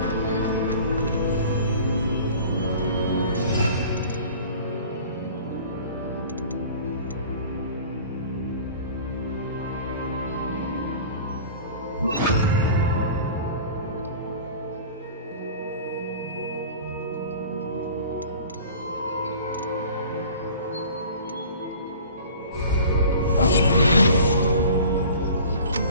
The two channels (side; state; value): both; inverted; correlation -0.43